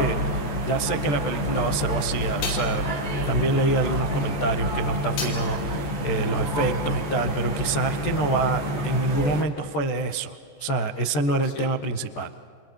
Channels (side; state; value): right; late; 14 ms